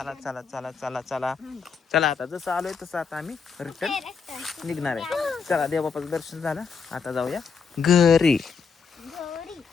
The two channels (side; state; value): right; quieter; 5.7 dB